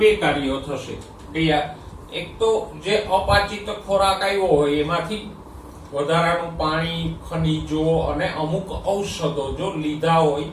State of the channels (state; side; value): identical; both; correlation 1.00